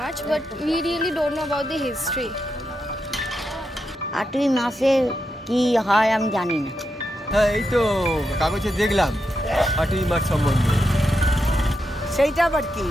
but we really don't know about the history. 8ই মাসে কি হয় আমি জানি না। হ্যাঁ, এই তো কাগজে দেখলাম 8ই মার্চ সম্বন্ধে। সেইটা আবার কি?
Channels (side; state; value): both; normal; correlation 0.85